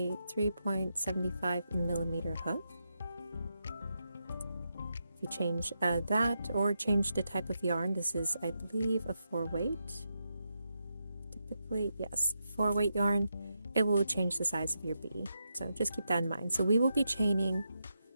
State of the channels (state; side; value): inverted; both; correlation -0.85